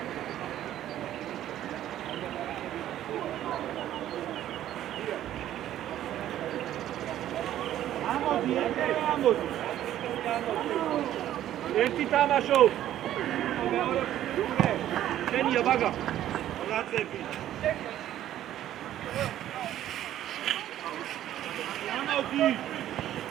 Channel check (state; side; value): quieter; left; 12.3 dB